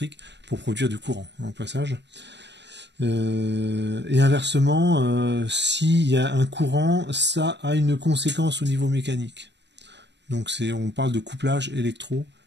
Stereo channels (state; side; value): late; left; 0.51 ms